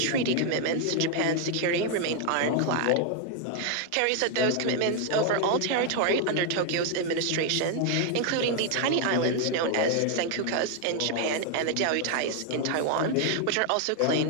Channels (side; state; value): both; different; correlation 0.00